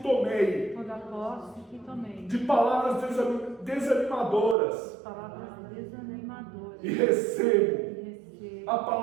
tomei de palavras desanimadoras, e recebo a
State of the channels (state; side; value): drops out; left; at 4.5 s